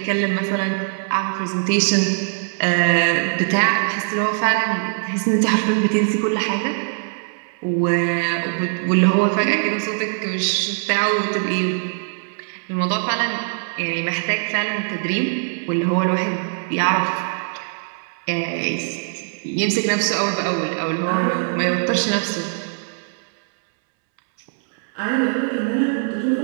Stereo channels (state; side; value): silent; left; 65 dB below the other